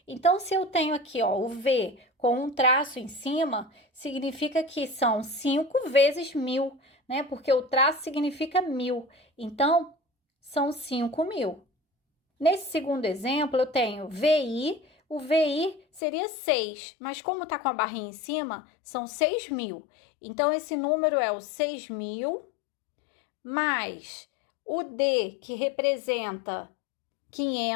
Então, se eu tenho aqui o V com um traço em cima, significa que são 5 vezes 1000, né? Porque o traço significa 1000. Então, são 5.000. Nesse segundo exemplo, eu tenho VI. O VI seria 6, mas como está com a barrinha em cima, são 6.000. Então, esse número é o 6.000 mais o D, que representa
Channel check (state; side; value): drops out; right; at 16.0 s